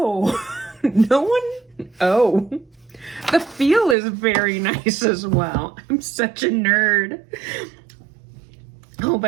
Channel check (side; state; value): left; drops out; at 4.0 s